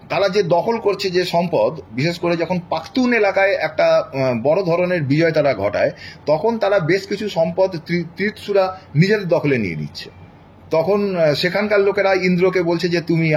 তারা যে দখল করছে যে সম্পদ, বিশেষ করে যখন পাখতুন এলাকায় একটা বড় ধরনের বিজয় তারা ঘটায়, তখন তারা বেশ কিছু সম্পদ ত্রিৎসুরা নিজেদের দখলে নিয়ে নিচ্ছে। তখন সেখানকার লোকেরা ইন্দ্রকে বলছে যে তুমি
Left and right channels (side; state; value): both; identical; correlation 1.00